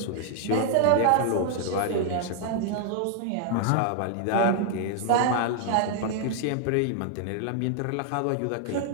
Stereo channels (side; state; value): both; different; correlation 0.00